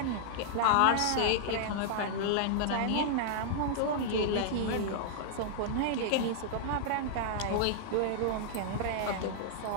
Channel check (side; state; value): both; different; correlation -0.01